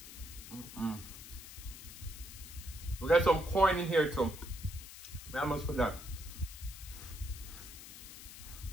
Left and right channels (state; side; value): noise; left; hiss, 13 dB below the sound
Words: We got some corn in here too. I almost forgot.